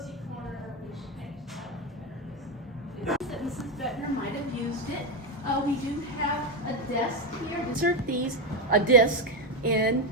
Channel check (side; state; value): both; normal; correlation 0.09